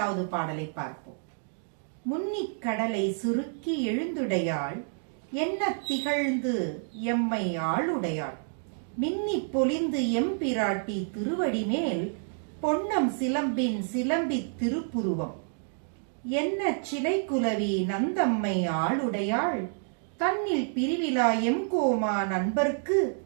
பாடலை பார்ப்போம். முன்னிக் கடலை சுருக்கி எழுந்துடையாள், என்ன திகழ்ந்து எம்மை ஆளுடையாள், மின்னி பொலிந்து எம்பிராட்டி திருவடி மேல், பொன்னம் சிலம்பின் சிலம்பித் திருப்புருவம், என்ன சிலை குலவி நந்தம்மை ஆளுடையாள், தன்னில் பிரிவிலா எம்கோமா நண்பர்க்கு,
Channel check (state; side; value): silent; left; digital silence